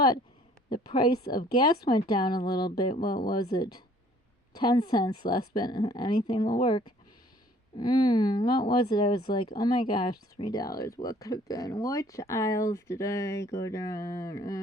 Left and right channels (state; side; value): normal; both; correlation 0.57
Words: the price of gas went down a little bit. What was it? 10 cents less, but anything will work. What was it? I was like, oh my gosh, $3. What could have been? Which aisles did I go down?